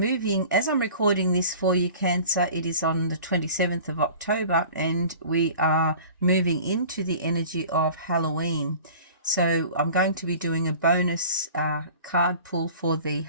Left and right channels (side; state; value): both; inverted; correlation -0.43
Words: as I'm recording this for you, Cancer, it is on the 27th of October, and we are moving into the energy of Halloween. So I'm going to be doing a bonus card pull for the